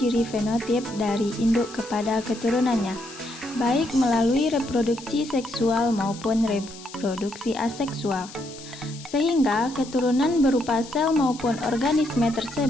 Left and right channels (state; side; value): noise; left; hiss, 17 dB below the sound